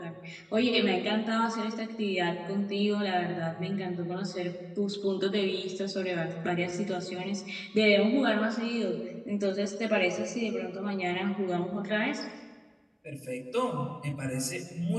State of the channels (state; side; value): identical; both; correlation 1.00